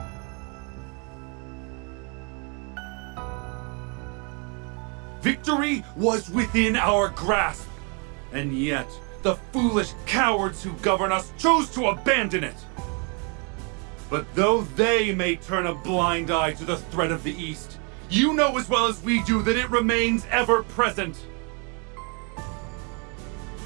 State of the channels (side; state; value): left; quieter; 35.3 dB